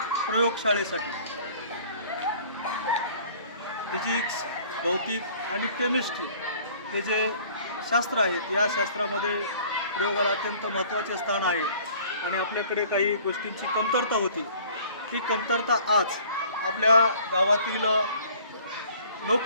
प्रयोगशाळेसाठी फिजिक्स, भौतिक आणि केमिस्ट्री हे जे शास्त्र आहेत, या शास्त्रामध्ये प्रयोगाला अत्यंत महत्त्वाचे स्थान आहे आणि आपल्याकडे काही गोष्टींची कमतरता होती. ती कमतरता आज आपल्या गावातील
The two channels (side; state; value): both; inverted; correlation -0.52